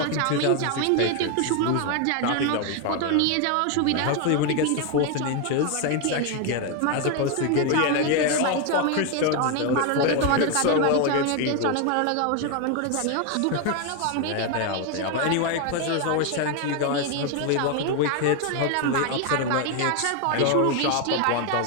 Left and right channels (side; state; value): both; different; correlation 0.01